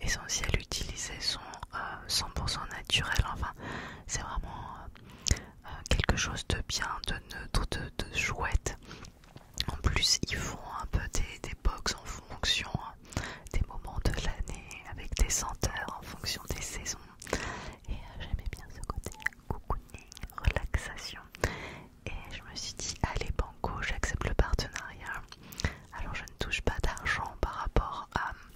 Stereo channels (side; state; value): both; identical; correlation 1.00